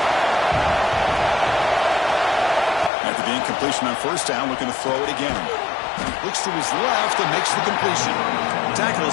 After the incompletion on first down, looking to throw it again. Looks to his left and makes the completion. The tackle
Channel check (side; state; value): right; drops out; at 2.9 s